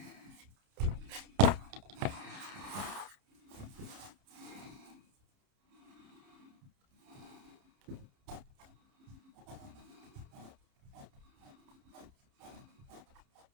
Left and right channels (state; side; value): late; left; 30 ms